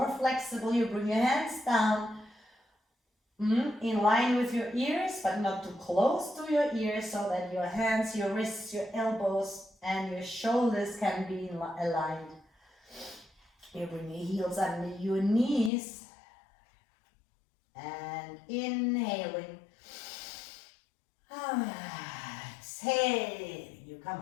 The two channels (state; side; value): drops out; right; at 15.7 s